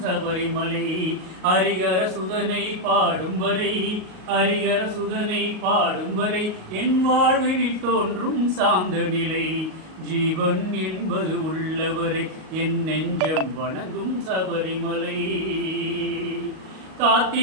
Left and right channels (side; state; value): left; late; 38 ms